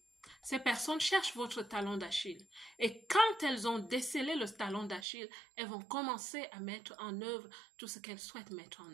Ces personnes cherchent votre talon d'Achille. Et quand elles ont décelé le talon d'Achille, elles vont commencer à mettre en œuvre tout ce qu'elles souhaitent mettre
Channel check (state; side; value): drops out; left; at 5.1 s